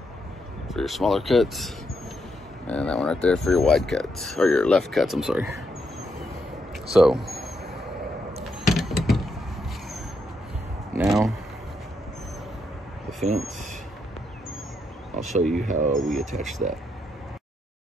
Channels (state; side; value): normal; both; correlation 0.80